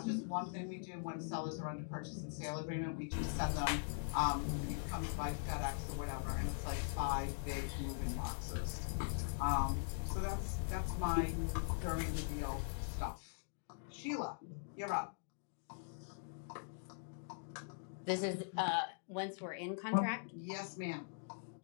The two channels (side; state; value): right; silent; digital silence